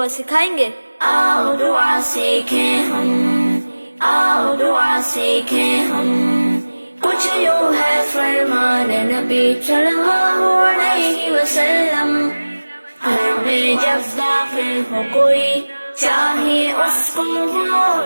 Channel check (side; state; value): both; inverted; correlation -1.00